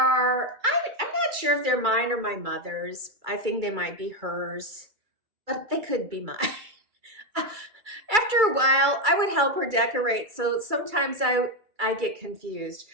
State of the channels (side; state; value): left; late; 2.3 ms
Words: I'm not sure if they're mine or my mother's. I think they might be hers, but they could be mine. After a while, I would help her decorate, so sometimes I get confused.